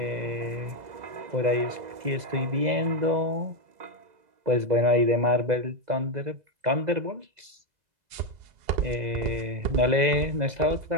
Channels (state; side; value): late; left; 2.0 ms